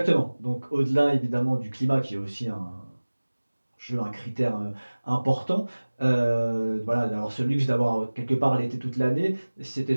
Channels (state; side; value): inverted; both; correlation -1.00